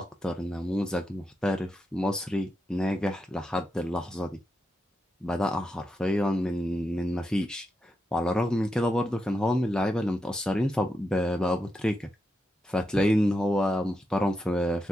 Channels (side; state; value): both; normal; correlation 0.86